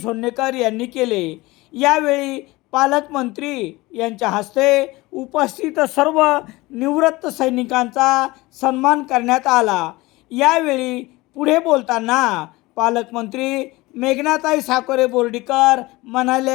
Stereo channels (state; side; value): quieter; right; 21.0 dB